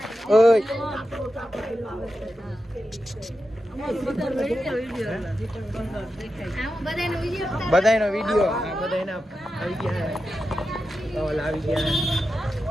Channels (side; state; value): both; normal; correlation 0.90